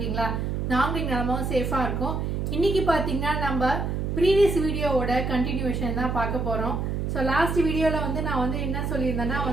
நாங்க இங்க நலமாவும் சேஃபா இருக்கோம். இன்னைக்கு பாத்தீங்கன்னா நம்ம previous வீடியோவோட continuation தான் பார்க்க போறோம். So last வீடியோல நான் என்ன சொல்லியிருந்தேன்னா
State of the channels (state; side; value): noise; right; hum, 1 dB below the sound